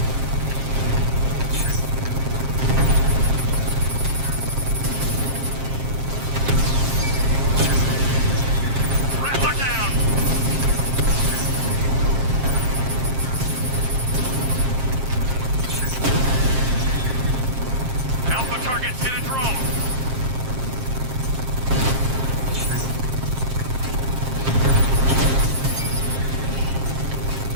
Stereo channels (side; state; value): left; late; 7.5 ms